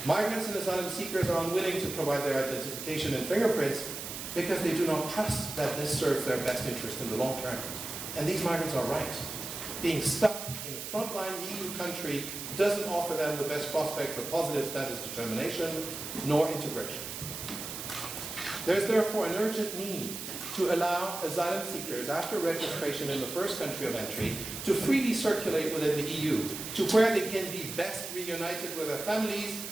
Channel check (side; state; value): right; noise; hiss, 7 dB below the sound